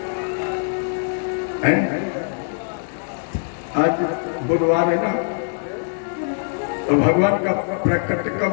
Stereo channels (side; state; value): right; silent; 64 dB below the other